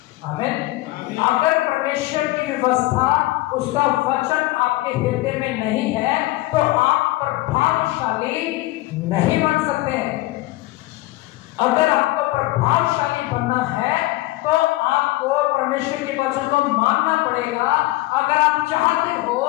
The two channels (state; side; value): quieter; right; 18.9 dB